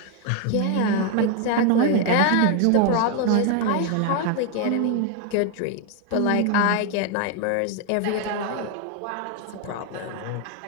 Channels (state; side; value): different; both; correlation 0.01